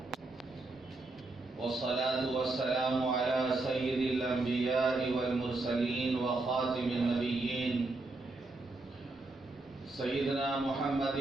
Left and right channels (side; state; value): left; quieter; 3.2 dB